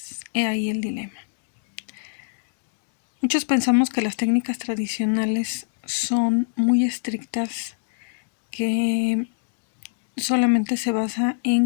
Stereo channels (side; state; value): right; silent; digital silence